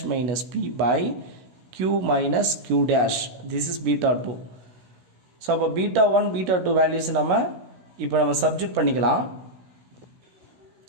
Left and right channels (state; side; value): late; left; 16 ms